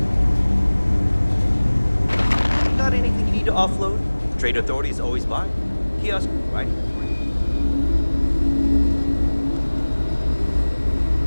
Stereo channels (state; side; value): inverted; both; correlation -1.00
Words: Got anything you need to offload? Trade Authority is always by. Kiosk, right?